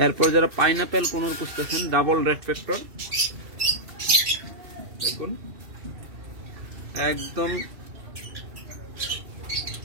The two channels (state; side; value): late; left; 2.7 ms